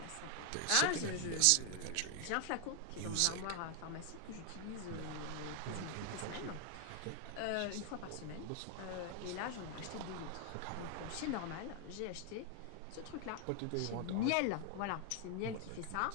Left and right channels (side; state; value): both; different; correlation 0.00